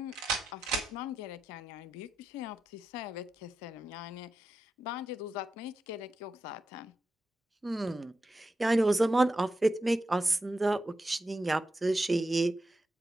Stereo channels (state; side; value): normal; both; correlation 0.89